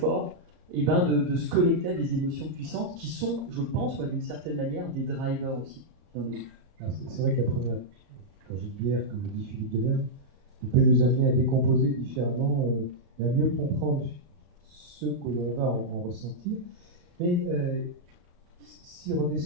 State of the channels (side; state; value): left; late; 34 ms